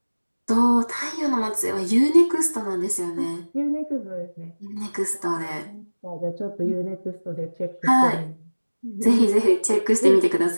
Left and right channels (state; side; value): inverted; both; correlation -1.00